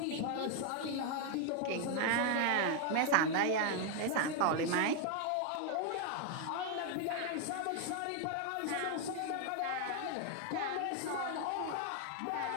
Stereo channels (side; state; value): both; different; correlation 0.01